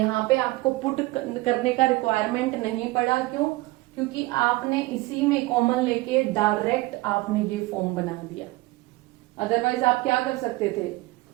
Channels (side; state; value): left; quieter; 20.9 dB